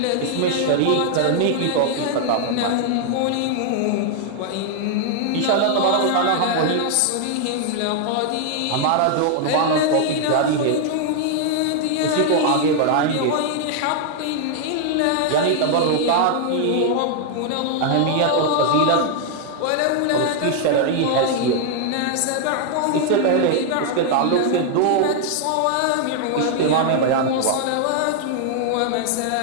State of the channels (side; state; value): both; different; correlation 0.00